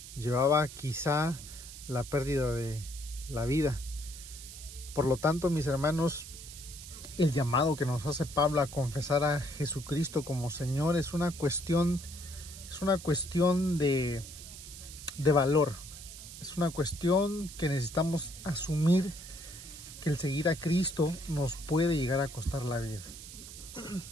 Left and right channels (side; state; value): right; noise; hiss, 13 dB below the sound